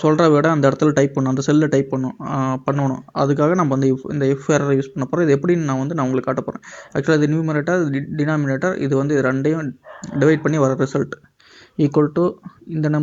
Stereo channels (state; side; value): identical; both; correlation 1.00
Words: சொல்கிற விட அந்த இடத்துல டைப் பண்ணணும், அந்த செல்லில் டைப் பண்ணணும். அதுக்காக நம்ம இந்த இஃப் எரர் யூஸ் பண்ண போகிறோம். இது எப்படின்னு நான் உங்களுக்கு காட்ட போகிறேன். ஆக்சுவலாக இது நியூமரேட்டர், டினாமினேட்டர். இது வந்து இது ரெண்டையும் டிவைட் பண்ணி வர ரிசல்ட் ஈக்குவல் டு இந்த